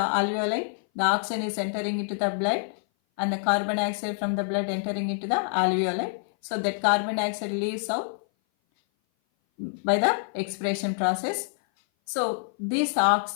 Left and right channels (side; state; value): right; silent; 57 dB below the other